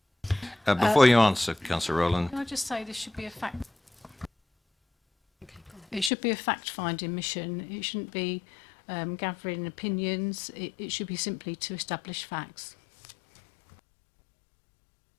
Before you answer, Councillor Rowland. Can I just say this should be a fact? It should be a fact-finding mission. It shouldn't be gathering opinions. It should be simply to establish facts.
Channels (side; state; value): right; drops out; at 6.1 s